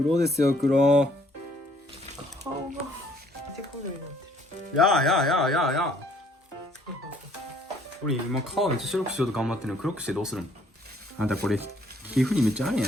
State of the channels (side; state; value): both; normal; correlation 0.62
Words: ですよ、黒。顔がめっちゃ黒になってる。やー。俺今顔めっちゃ白くしようと頑張ってるのに黒くしてどうするの？あなたこれ皮膚にめっちゃあるんや